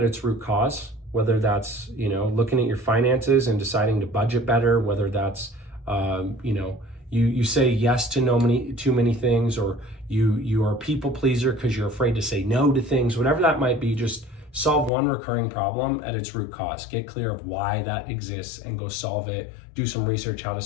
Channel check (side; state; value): right; drops out; at 14.9 s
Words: its root cause, whether that's, you know, looking at your finances and deciding to budget better, whether that's, you know, you say yes to too many things, or you are a people pleaser because you're afraid to say no to things, whatever that might be. Just solve one recurring problem at its root cause. Get clear of why that exists and go solve it. Do some research how to